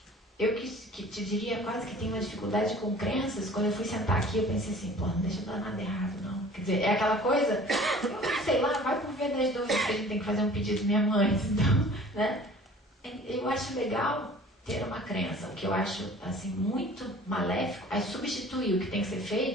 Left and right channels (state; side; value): normal; both; correlation 0.47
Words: eu que te diria quase que tenho uma dificuldade com crenças. Quando eu fui sentar aqui, eu pensei assim, não deixa eu dar nada errado, não. Quer dizer, é aquela coisa, sei lá, vai por ver das dúvidas que a gente tem que fazer um pedido minha mãe, então, né? Eu acho legal ter uma crença, o que eu acho assim muito maléfico, é substituir o que tem que ser